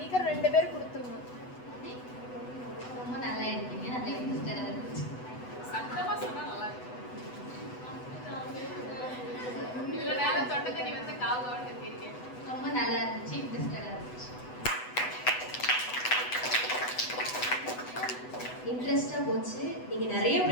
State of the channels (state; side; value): late; right; 8.0 ms